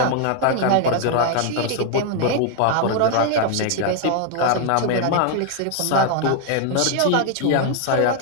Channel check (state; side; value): different; both; correlation 0.00